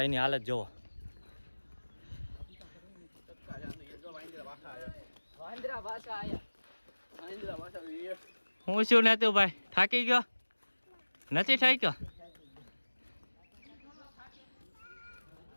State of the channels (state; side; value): inverted; both; correlation -1.00